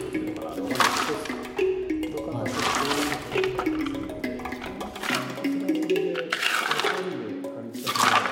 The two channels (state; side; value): identical; both; correlation 1.00